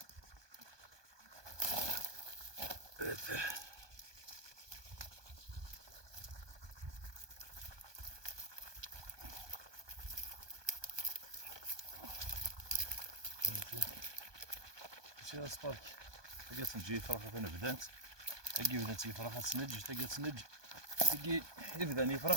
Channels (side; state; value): left; late; 1.2 ms